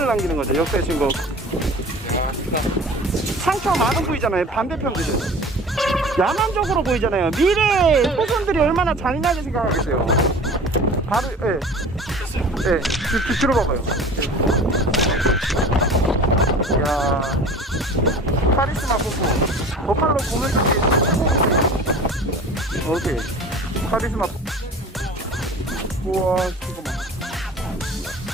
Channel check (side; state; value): both; normal; correlation 0.41